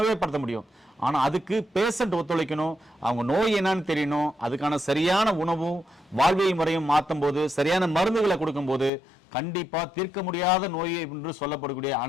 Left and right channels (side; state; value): right; drops out; at 8.9 s